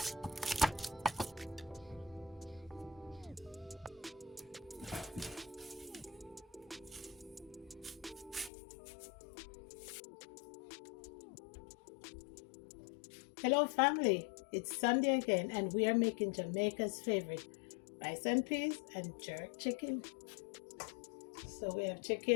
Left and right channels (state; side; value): drops out; right; at 8.5 s